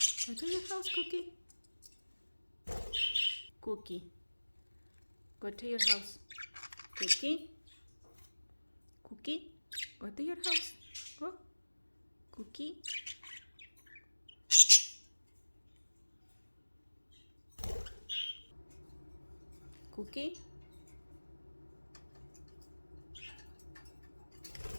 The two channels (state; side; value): inverted; both; correlation -1.00